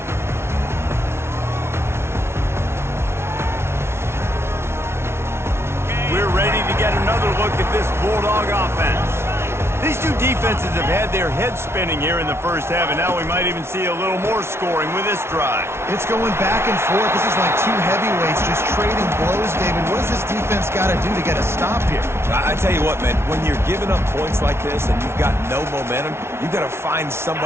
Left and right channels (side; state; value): left; late; 0.12 ms